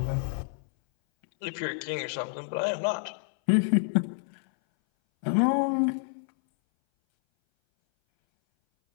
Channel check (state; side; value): silent; right; 58 dB below the other